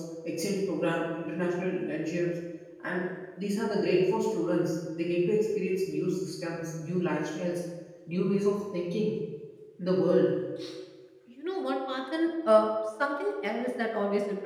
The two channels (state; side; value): identical; both; correlation 1.00